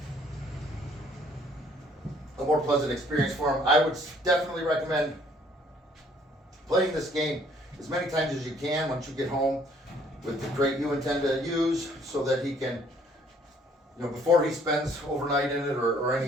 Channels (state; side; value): normal; both; correlation 0.61